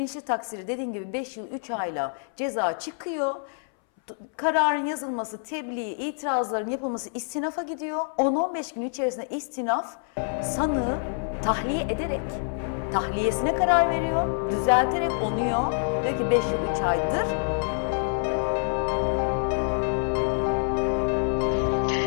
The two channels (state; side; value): silent; right; 61 dB below the other